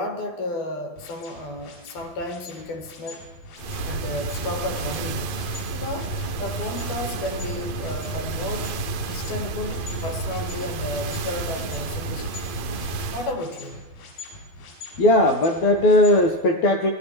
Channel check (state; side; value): late; right; 12 ms